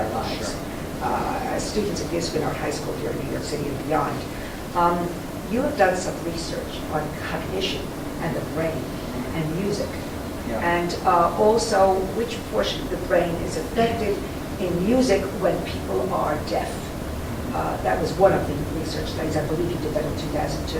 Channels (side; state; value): both; identical; correlation 1.00